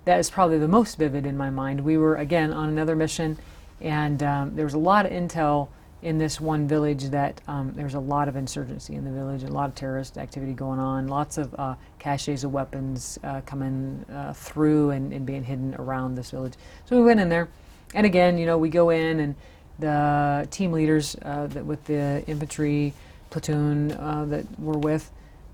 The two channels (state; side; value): identical; both; correlation 1.00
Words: that is probably the most vivid in my mind. We were, again, on another mission, and there was a lot of intel in this one village that there's a lot of insurgency in the village, a lot of terrorist activity going on, lots of caches of weapons coming through and being hidden around this village. So we went in there, and again, we go in, and the team leaders with the infantry platoon that we're with